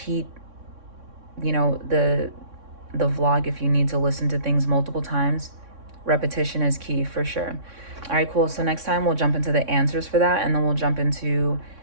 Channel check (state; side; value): late; left; 3.6 ms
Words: the vlog if you need to listen to things multiple times. Repetition is key for sure. All right, cool. So next time we'll jump into the answers for that, and then we'll jump into